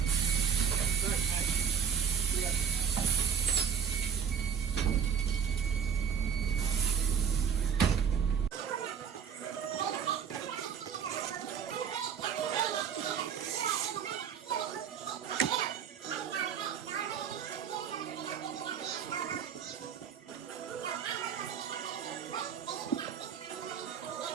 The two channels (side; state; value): left; quieter; 7.4 dB